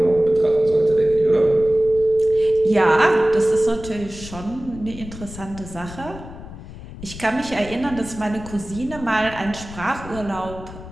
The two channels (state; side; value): noise; left; rumble, 14 dB below the sound